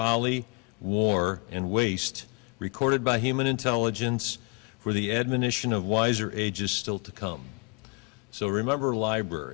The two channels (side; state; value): right; quieter; 31.0 dB